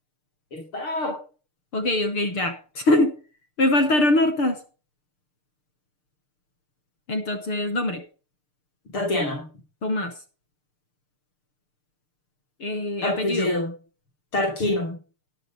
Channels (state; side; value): late; right; 6.7 ms